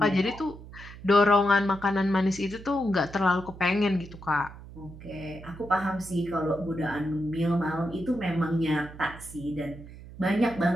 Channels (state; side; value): noise; right; hum, 16 dB below the sound